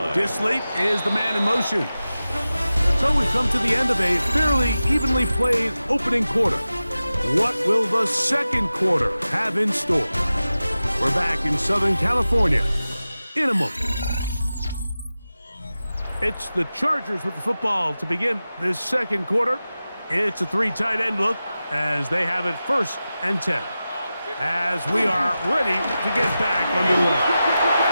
Disley is the man in motion. So we've come to the end of a fairly evenly played opening quarter. What will the second quarter have in store? We're back in Southern California in a moment. It's the Chargers with the football to begin this second quarter. It's a 3 tight end look as they have it 1st and 10. As we are ready to get back underway.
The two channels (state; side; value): inverted; both; correlation -0.94